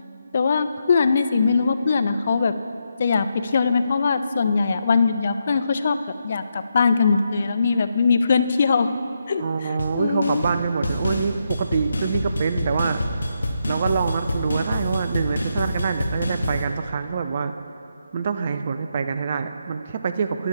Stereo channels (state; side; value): inverted; both; correlation -0.82